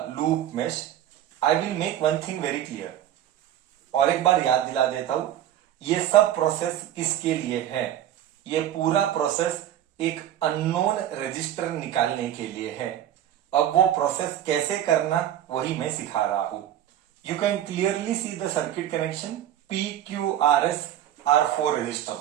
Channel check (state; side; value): quieter; left; 11.6 dB